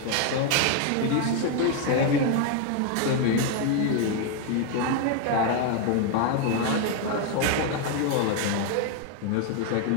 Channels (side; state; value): both; different; correlation 0.01